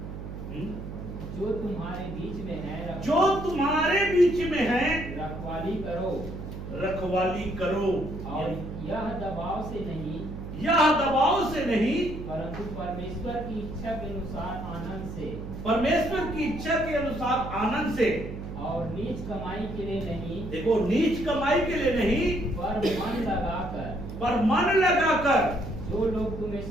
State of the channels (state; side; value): noise; right; hum, 9 dB below the sound